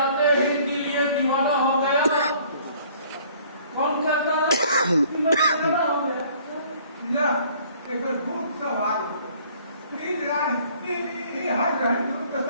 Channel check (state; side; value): inverted; both; correlation -0.57